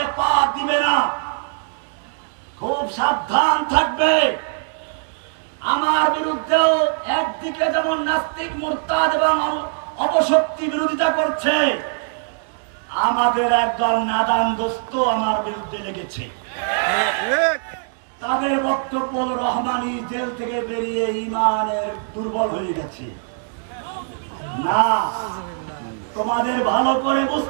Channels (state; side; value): silent; left; digital silence